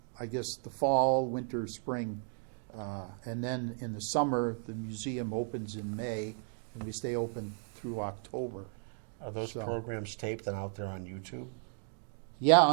fall, winter, spring. And then in the summer, the museum opens in May, and we stay open through October. Are those So- programs taped and out there on YouTube? Yeah,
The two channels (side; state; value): left; silent; 55 dB below the other